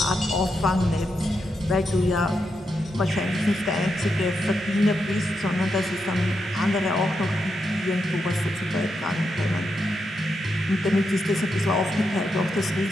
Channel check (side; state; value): both; normal; correlation 0.84